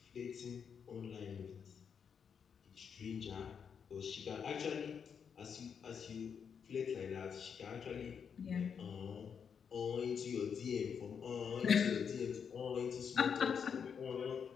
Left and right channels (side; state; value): right; quieter; 7.0 dB